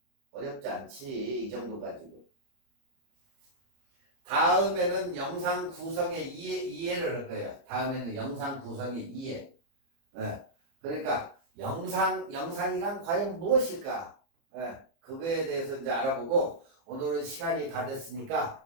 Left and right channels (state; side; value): late; left; 30 ms